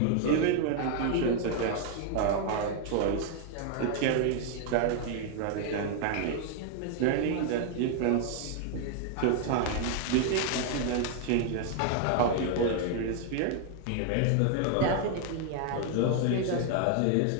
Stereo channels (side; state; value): both; different; correlation 0.00